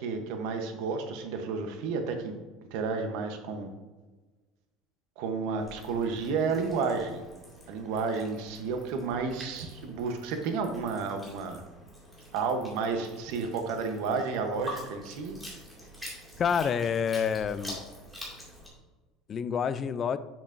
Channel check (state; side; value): normal; both; correlation 0.35